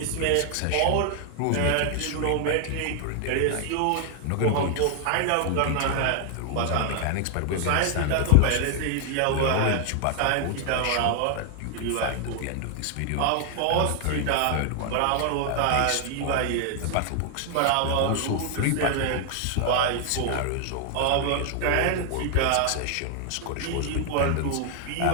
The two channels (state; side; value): different; both; correlation 0.00